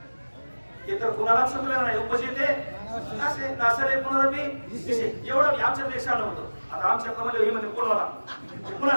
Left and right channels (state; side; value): inverted; both; correlation -1.00